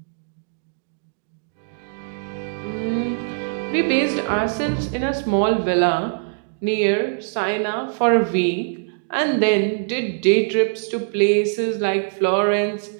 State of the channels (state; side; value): silent; left; digital silence